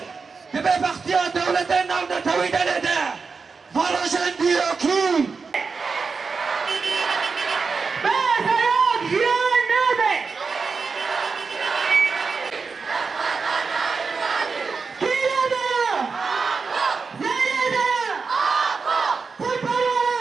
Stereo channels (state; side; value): quieter; left; 4.9 dB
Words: دبه بختیان دولت نام نتوی نده فالاشن دیروکی